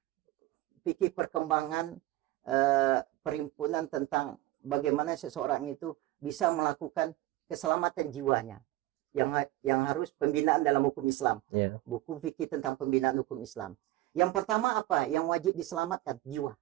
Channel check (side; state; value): left; quieter; 16.8 dB